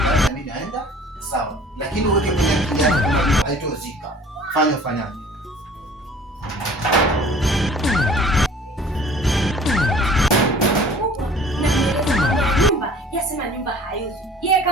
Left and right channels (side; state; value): both; normal; correlation 0.48